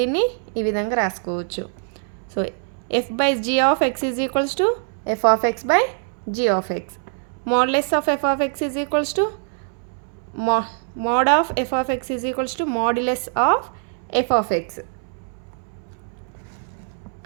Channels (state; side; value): silent; left; 63 dB below the other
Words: ఈ విధంగా రాసుకోవచ్చు. So f by g of x is equals to f of x by g of x. Modulus of f of x is equals to mod of f of x is equals to modulus of f of x.